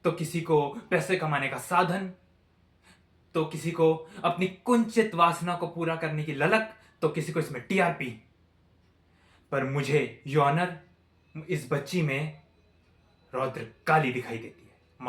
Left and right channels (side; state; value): both; identical; correlation 1.00